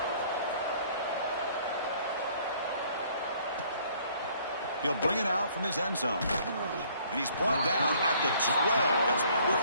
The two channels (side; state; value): both; inverted; correlation -0.59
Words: He'll bring it out from his end zone. And he's brought down at the 12. That's poor